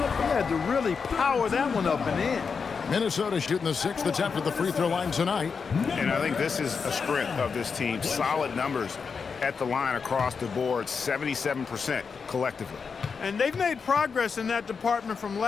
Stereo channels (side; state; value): right; quieter; 5.6 dB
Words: had to really power that one up and in. Minnesota shooting the 6th attempt at the free throw line tonight. And I think this is a strength of this team. Solid numbers at the line across the board, 77% collectively. And they've made progress in that department from